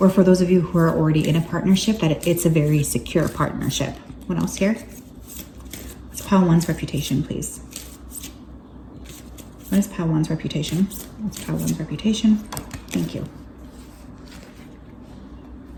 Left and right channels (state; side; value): identical; both; correlation 1.00